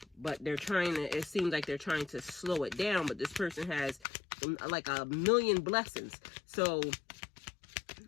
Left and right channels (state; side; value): drops out; right; at 4.0 s